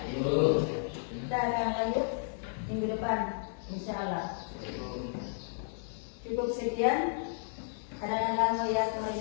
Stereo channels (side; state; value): right; silent; 56 dB below the other